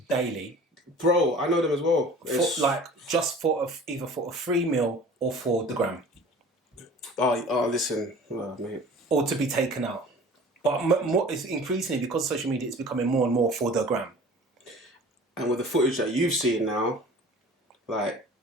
daily, Bro, I know them as well. just for either for a free meal or for the gram, Listen, mate. or to be taken out. But more, it's increasingly, because social media, it's becoming more and more for the gram. And with the footage that you've seen now, like,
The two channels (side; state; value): both; normal; correlation 0.44